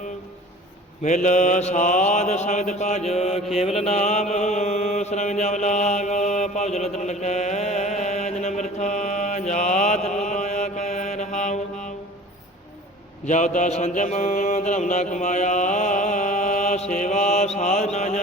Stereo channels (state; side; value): normal; both; correlation 0.44